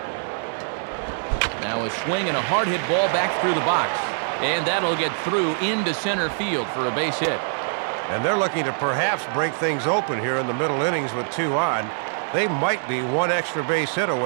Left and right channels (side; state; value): left; silent; digital silence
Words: Now a swing and a hard hit ball back through the box. And that'll get through into center field for a base hit. And they're looking to perhaps break things open here in the middle innings with 2 on. They might be 1 extra base hit